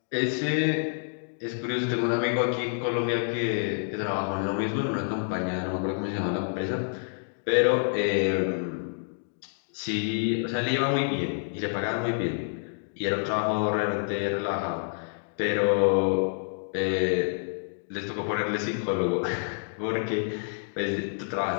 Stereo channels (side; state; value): right; silent; digital silence